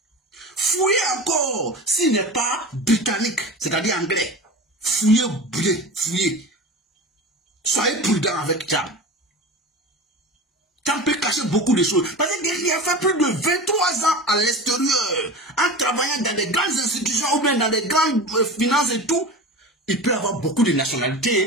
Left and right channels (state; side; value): normal; both; correlation 0.31